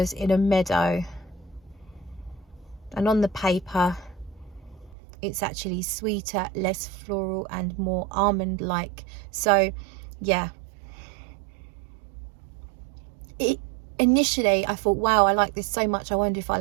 in a meadow. And on the paper, it's actually sweeter, less floral, and more almond like. So yeah, initially I thought, wow, I like this so much, I wonder if I'll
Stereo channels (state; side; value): drops out; left; at 5.0 s